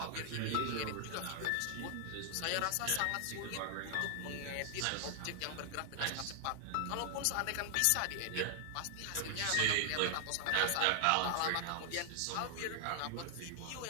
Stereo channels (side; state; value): both; different; correlation 0.00